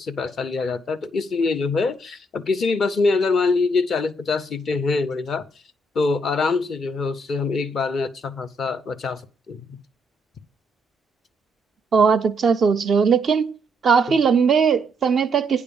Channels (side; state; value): both; normal; correlation 0.73